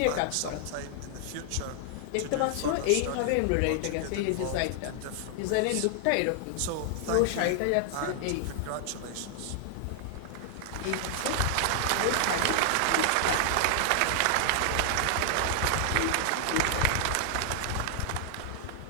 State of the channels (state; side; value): different; both; correlation 0.00